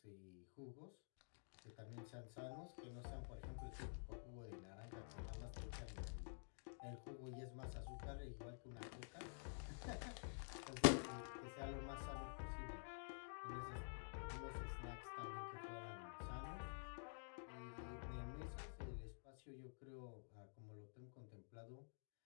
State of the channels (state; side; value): silent; right; digital silence